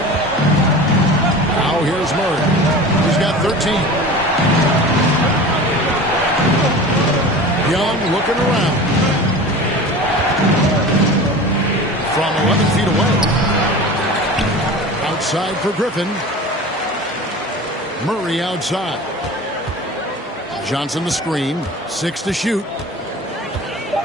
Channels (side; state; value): both; normal; correlation 0.36